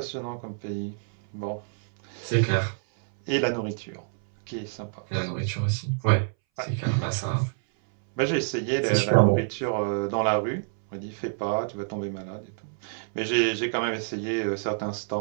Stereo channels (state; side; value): silent; left; 60 dB below the other